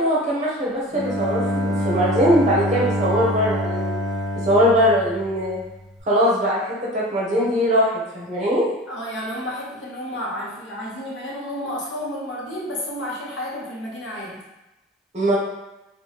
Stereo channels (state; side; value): normal; both; correlation 0.36